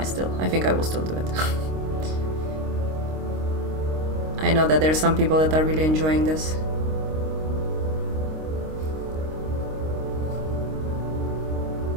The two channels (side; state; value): left; late; 26 ms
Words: I think I will still do it. I know that there's some people that are really enjoying this.